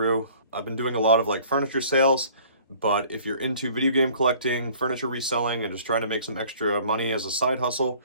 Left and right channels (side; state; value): both; inverted; correlation -0.52